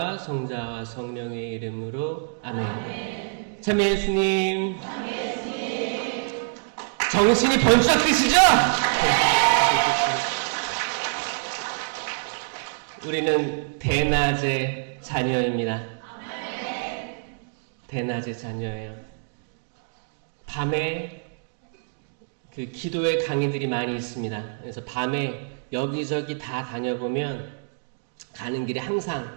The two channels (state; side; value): silent; left; digital silence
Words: 성자와 성령의 이름으로 아멘. 아멘. 참 예수님. 정신이 번쩍 드시죠? 우리는 대낮의 자녀입니다. 대낮의 자녀예요. 밤에 그 기도의 강의들이 많이 있습니다. 그래서 밤에 여기저기 다 다녀보면 가는 길에